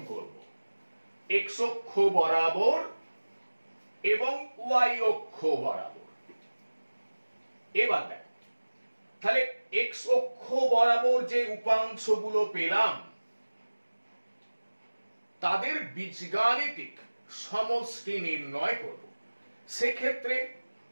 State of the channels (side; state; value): both; inverted; correlation -1.00